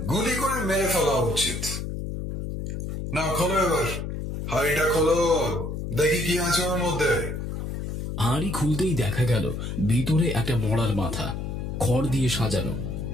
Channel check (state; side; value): noise; left; hum, 5 dB below the sound